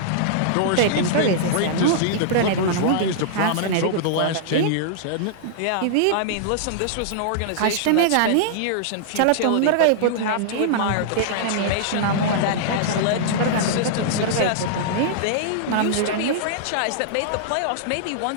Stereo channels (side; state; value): both; different; correlation -0.02